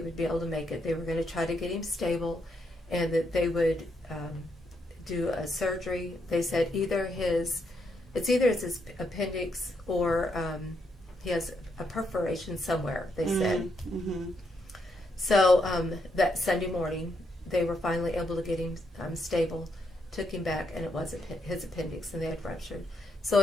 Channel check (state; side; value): normal; both; correlation 0.78